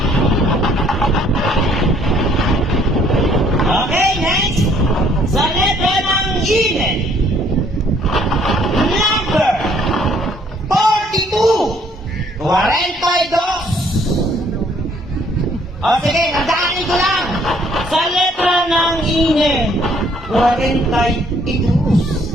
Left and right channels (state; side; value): normal; both; correlation 0.63